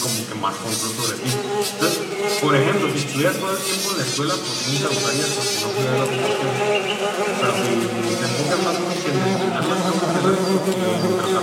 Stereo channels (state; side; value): identical; both; correlation 1.00